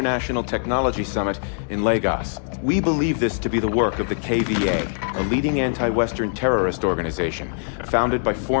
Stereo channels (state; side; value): silent; right; digital silence